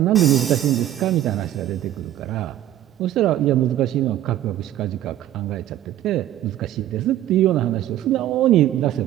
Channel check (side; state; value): left; quieter; 12.8 dB